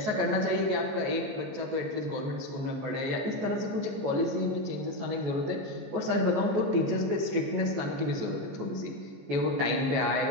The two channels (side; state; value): left; late; 14 ms